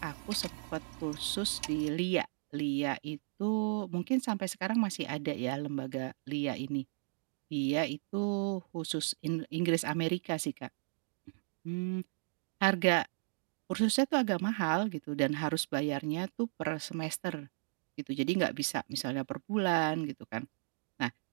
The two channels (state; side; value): silent; left; digital silence